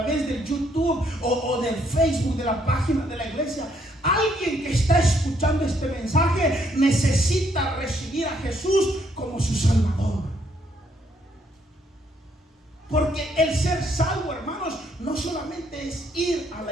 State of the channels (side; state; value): both; normal; correlation 0.70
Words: del YouTube o del Facebook, de la página de la iglesia. Alguien que está escuchando este mensaje necesita recibir a Jesús como su Salvador. Porque el ser salvo, hermanos, no solamente es ir a